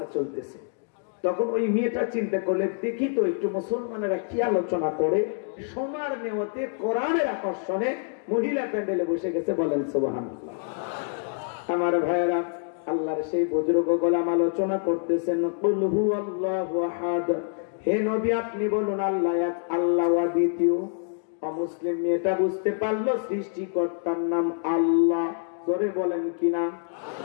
চলতেছে, তখন ওই মেয়েটা চিন্তা করলে দেখি তো একটু মুসলমানেরা কি আলোচনা করে। সোনার নেওয়াতে কোরআনের আকর্ষণে মহিলা প্যান্ডেলে বসে গেছে, বলেন সুবহানাল্লাহ। আমার ভাইয়েরা, আল্লাহর সেই বুজুর্গ গোলাম আলোচনা করতেছেন কুল হুয়াল্লাহু আহাদ, হে নবী আপনি বলুন আল্লাহ এক, আল্লাহ দ্বিতীয়। অমুসলিম মেয়েটা বুঝতে পারলো সৃষ্টিকর্তার নাম আল্লাহ। জোরে বলেন কি নাম?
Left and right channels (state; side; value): silent; right; 60 dB below the other